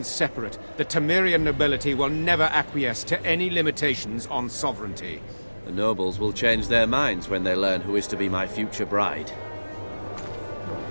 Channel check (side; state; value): both; inverted; correlation -1.00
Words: separate, the Temerian nobility will never acquiesce to any limitations on sovereignty. The nobles will change their minds when they learn who is to be my future bride.